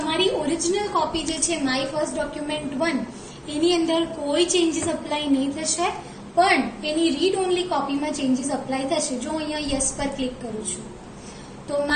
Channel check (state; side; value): identical; both; correlation 1.00